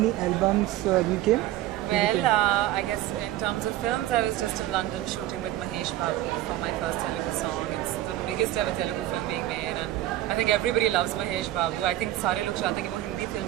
albums you came? well, I guess in terms of films, I was just in London shooting with Mahesh Babu for my first Telugu song. It's the biggest ever Telugu film being made, and I think everybody loves Mahesh Babu. I think सारे लोग चाहते हैं कि वो Hindi film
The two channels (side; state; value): left; quieter; 14.5 dB